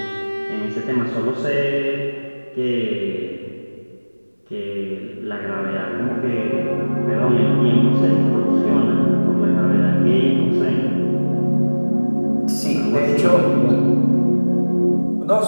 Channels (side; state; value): both; inverted; correlation -1.00